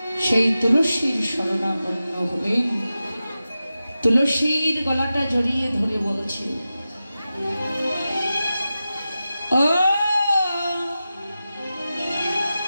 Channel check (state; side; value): inverted; both; correlation -0.93